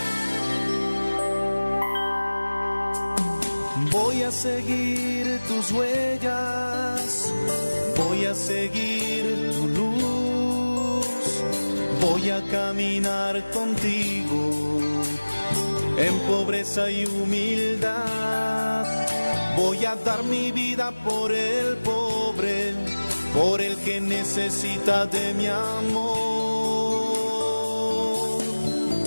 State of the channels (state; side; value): inverted; both; correlation -1.00